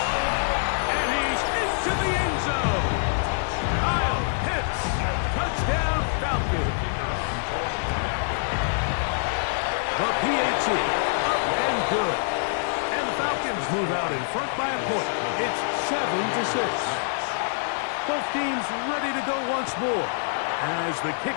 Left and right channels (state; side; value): silent; right; digital silence